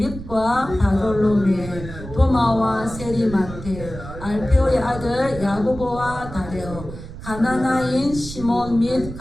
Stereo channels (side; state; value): right; noise; rumble, 12 dB below the sound